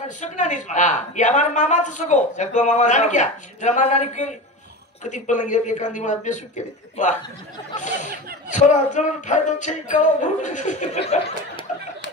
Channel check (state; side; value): normal; both; correlation 0.27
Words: सकना नाही हां या हमारा मामाचं सगो मामा नानी क्या जरा मारणारी केली कधी पलंगी एखादी मला बेसू केली वा थोडा जण फायदा छे का